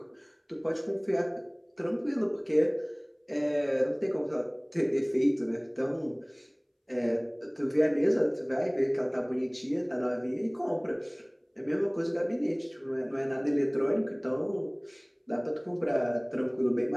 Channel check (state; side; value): identical; both; correlation 1.00